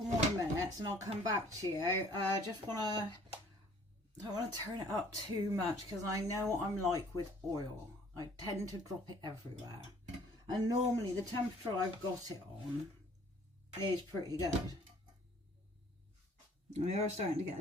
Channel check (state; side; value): normal; both; correlation 0.57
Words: more minutes and I'll come back to you. I don't want to turn it up too much because I know what I'm like with oil. I tend to drop it everywhere. And normally the temperature I've got it on is pretty good. We are starting to get a